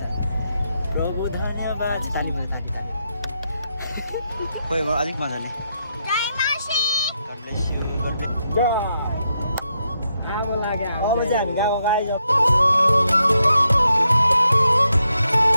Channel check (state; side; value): inverted; both; correlation -0.82